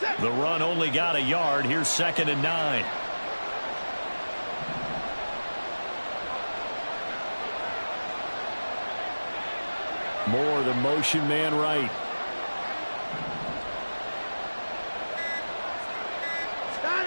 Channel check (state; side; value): inverted; both; correlation -1.00